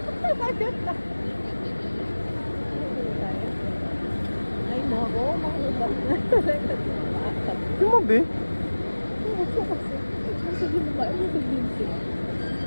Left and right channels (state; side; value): inverted; both; correlation -1.00